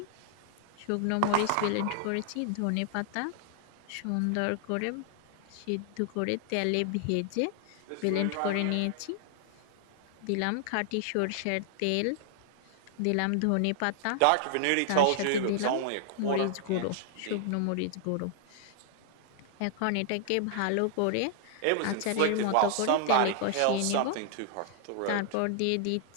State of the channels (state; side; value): different; both; correlation -0.01